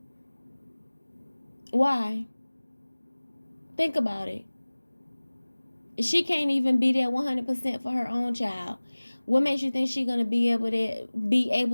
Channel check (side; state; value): both; inverted; correlation -1.00